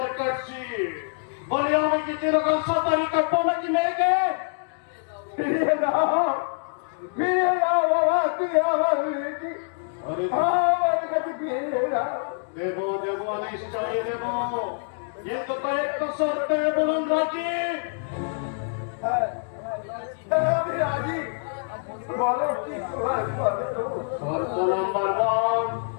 কাটছি। বলি আমি কি যেরকম সাঁতারি কাটবো নাকি মেয়েকে? ফিরিয়ে দাও, ফিরিয়ে দাও বাবা, তুই আমার মেয়েকে আমার কাছে ফিরিয়ে দাও। দেবো দেবো নিশ্চয়ই দেবো, কিন্তু কয়েকটা শর্তে বলুন রাজি। আমি রাজি, বলো কি তোমার শর্ত? শর্ত নাম্বার 1,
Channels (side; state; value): right; silent; digital silence